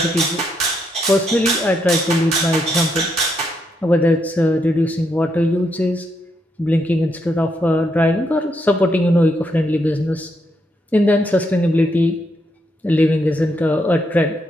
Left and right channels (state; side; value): normal; both; correlation 0.78